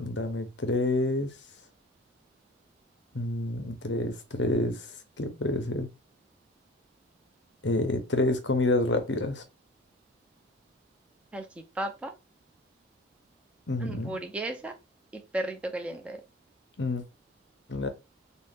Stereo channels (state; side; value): normal; both; correlation 0.41